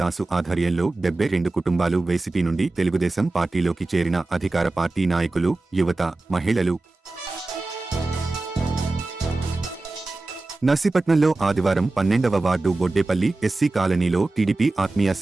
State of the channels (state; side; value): quieter; left; 3.2 dB